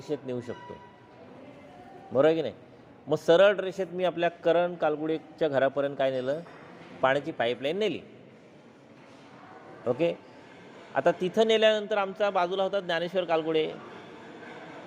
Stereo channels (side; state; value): both; identical; correlation 1.00